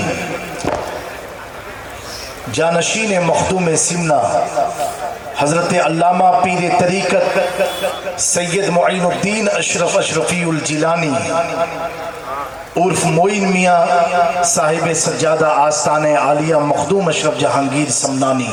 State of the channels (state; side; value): identical; both; correlation 1.00